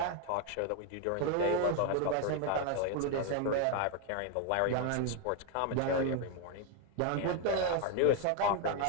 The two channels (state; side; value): different; both; correlation 0.01